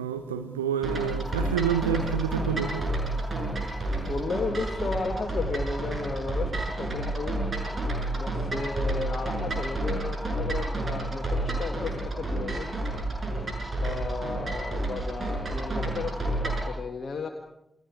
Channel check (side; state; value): both; normal; correlation 0.61